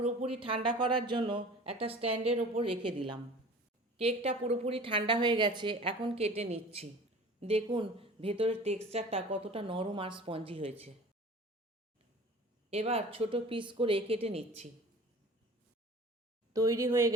ঠান্ডা করার জন্য একটা স্ট্যান্ডের ওপর রেখে দিলাম। কেকটা পুরোপুরি ঠান্ডা হয়ে গেছে, এখন কেটে নিচ্ছি। দেখুন ভেতরের টেক্সচারটা কতটা নরম আর স্পঞ্জি হয়েছে। এবার ছোট পিস করে কেটে নিচ্ছি। তৈরি হয়ে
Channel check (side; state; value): both; normal; correlation 0.42